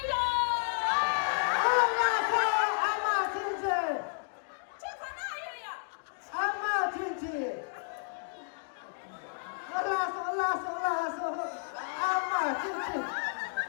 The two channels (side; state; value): right; silent; digital silence